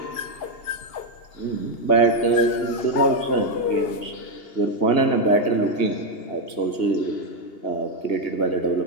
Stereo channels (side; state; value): right; late; 2.8 ms